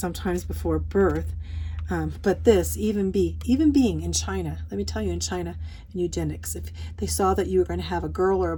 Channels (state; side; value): identical; both; correlation 1.00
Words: before birth. But this, even being in China, let me tell you, in China, in eugenics, if they saw that you were going to have a girl or a